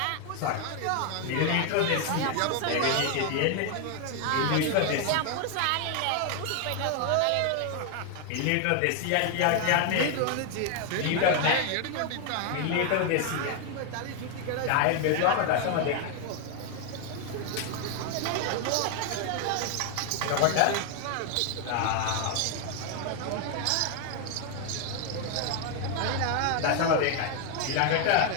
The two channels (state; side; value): different; both; correlation 0.00